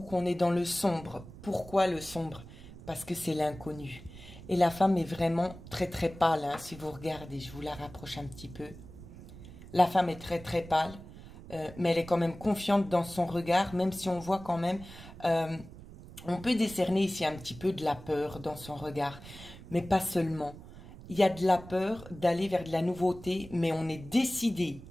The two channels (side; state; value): right; noise; rumble, 16 dB below the sound